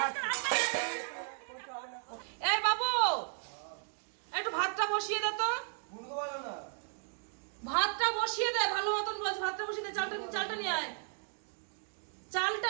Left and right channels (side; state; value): left; silent; 55 dB below the other